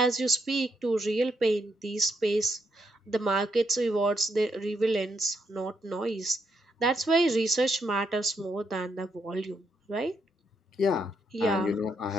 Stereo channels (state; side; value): normal; both; correlation 0.78